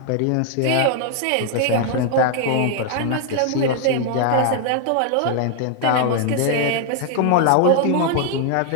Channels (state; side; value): different; both; correlation 0.00